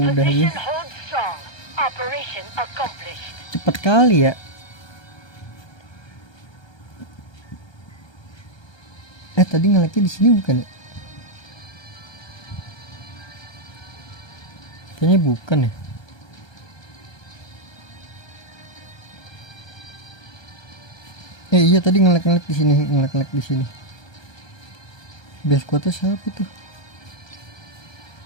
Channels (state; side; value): late; right; 1.3 ms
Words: ya. Hold strong. Operation accomplished. Cepet cepet kali ya. Tadi ngeleknya di sini bukan ya? Kayaknya bukan ya. Iya tadi ngelek di sini, ngelek di sini. Base quotnya siapa itu?